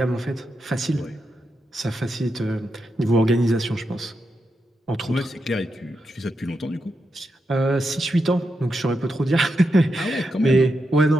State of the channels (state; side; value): normal; both; correlation 0.85